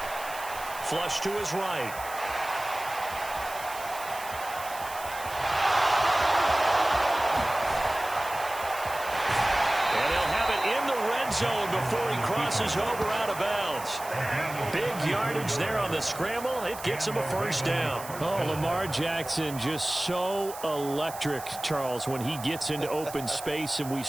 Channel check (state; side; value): noise; right; hiss, 13 dB below the sound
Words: Flush to his right. Zone before he crosses over out of bounds. Big yardage there on the scramble. It gets him a first down. Oh, Lamar Jackson just so electric, Charles, when he gets into open space, and we